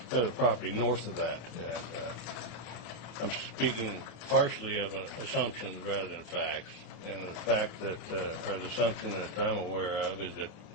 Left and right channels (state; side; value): late; right; 28 ms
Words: got a property north of that. And, I'm speaking partially of assumptions rather than facts. And the fact that, or the assumption that I'm aware of is that